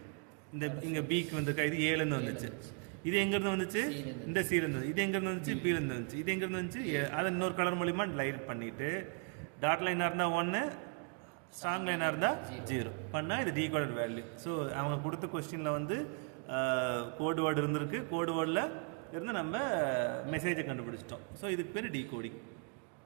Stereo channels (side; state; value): left; quieter; 35.7 dB